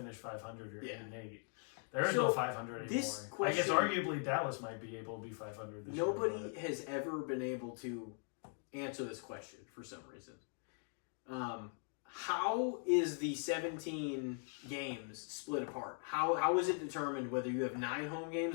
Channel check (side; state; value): right; silent; 51 dB below the other